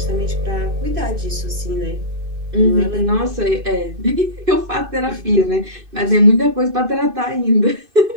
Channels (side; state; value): left; late; 2.6 ms